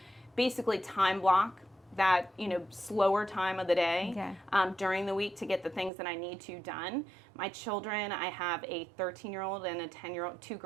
basically time block that, slower time of the day during the week to get the things that I need to done. My children, I have a 13-year-old and a 10-year-old, 2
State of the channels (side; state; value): left; drops out; at 5.9 s